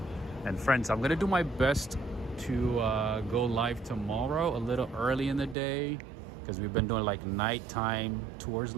And friends, I'm going to do my best to go live tomorrow a little early in the day. because we've been doing like nighttime tours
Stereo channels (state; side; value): drops out; left; at 5.6 s